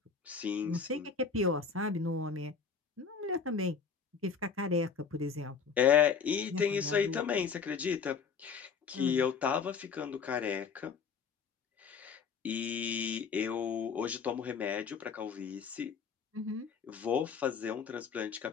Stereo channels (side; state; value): right; quieter; 6.0 dB